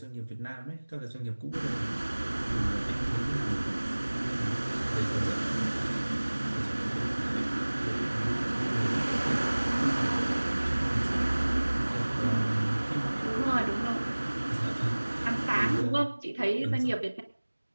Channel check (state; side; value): inverted; both; correlation -1.00